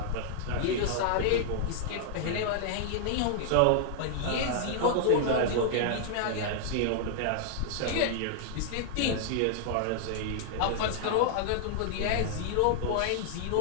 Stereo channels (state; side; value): different; both; correlation -0.01